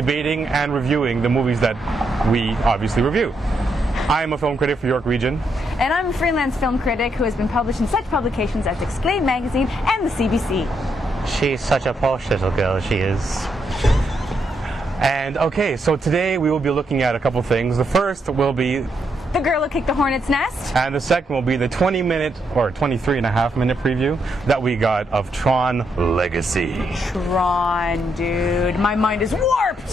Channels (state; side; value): normal; both; correlation 0.79